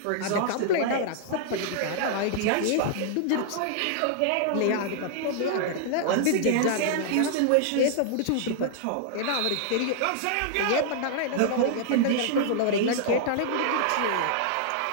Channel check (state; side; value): different; both; correlation -0.01